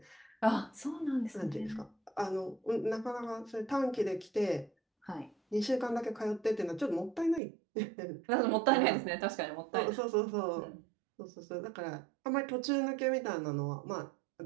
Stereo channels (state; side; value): drops out; left; at 7.4 s